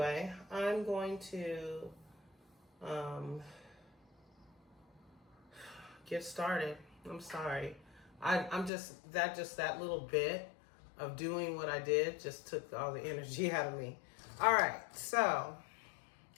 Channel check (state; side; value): drops out; right; at 8.7 s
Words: I'm going to get started. I'm sorry. I'm just that little bit of doing what I did just took all the energy out of me. All right, so